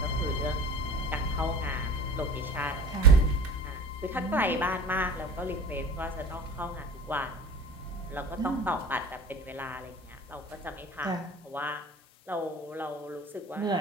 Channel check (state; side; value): normal; both; correlation 0.40